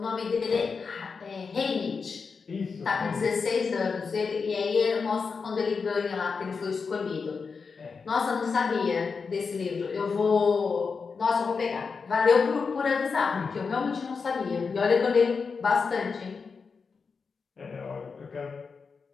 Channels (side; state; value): right; quieter; 5.2 dB